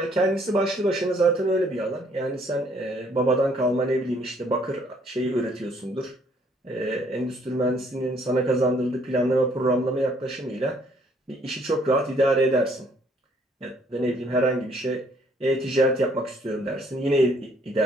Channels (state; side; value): normal; both; correlation 0.64